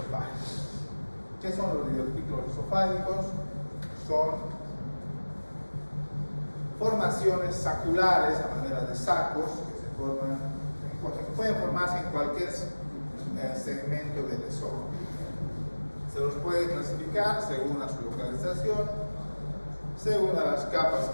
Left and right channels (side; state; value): both; inverted; correlation -1.00